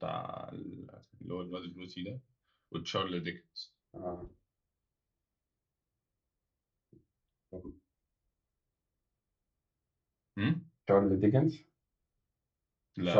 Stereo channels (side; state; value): both; identical; correlation 1.00